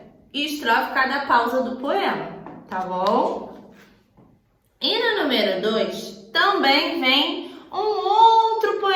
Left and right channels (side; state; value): both; identical; correlation 1.00